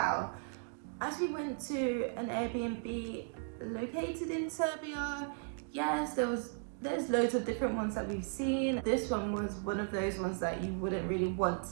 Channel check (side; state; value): left; silent; 54 dB below the other